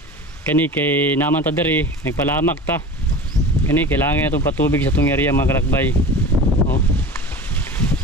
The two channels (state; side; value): normal; both; correlation 0.35